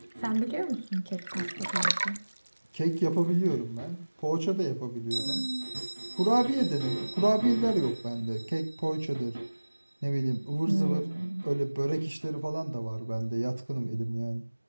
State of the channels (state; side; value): inverted; both; correlation -1.00